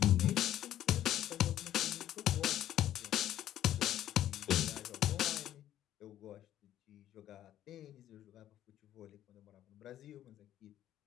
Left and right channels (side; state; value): right; quieter; 12.1 dB